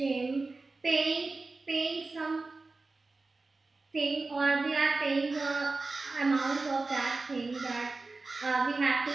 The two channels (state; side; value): quieter; left; 3.6 dB